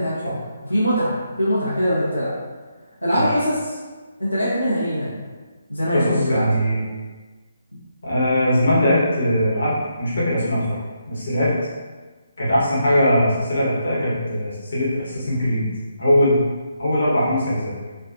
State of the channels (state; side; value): inverted; both; correlation -0.80